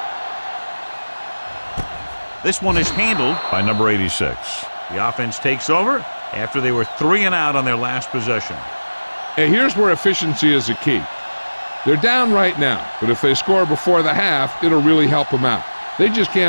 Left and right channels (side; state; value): both; inverted; correlation -1.00